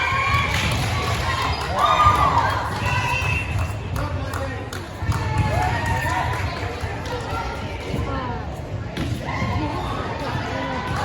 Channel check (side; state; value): both; identical; correlation 1.00